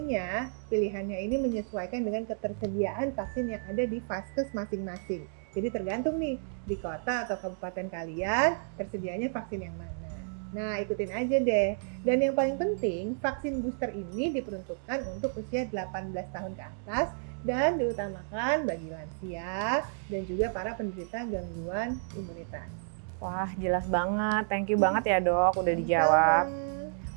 pilihannya ini menyesuaikan dengan ketersediaan vaksin yang ada di vaskes masing-masing. Jadi tergantung nih, di kota atau kabupaten kalian tersedianya vaksin yang mana. Nah, ikutin aja deh. Dan yang paling penting, vaksin booster ini diperuntukkan untuk usia 18 tahun ke atas dan diutamakan bagi lansia dan juga para penderita gangguan imunitas. Wah, jelas banget. Thank you banget ya dok, udah dijawab.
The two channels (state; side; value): silent; left; digital silence